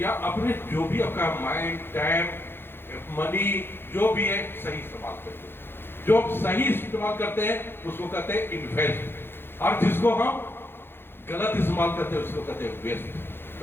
अपने जो भी आपका माइंड, टाइम, मनी जो भी है, सही इस्तेमाल करिए। जो सही इस्तेमाल करते हैं उसको कहते हैं इन्वेस्ट, और जिसको हम गलत इस्तेमाल करते हैं उसको कहते हैं वेस्ट।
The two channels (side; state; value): right; late; 0.11 ms